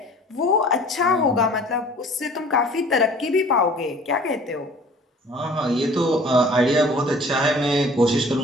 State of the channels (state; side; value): normal; both; correlation 0.49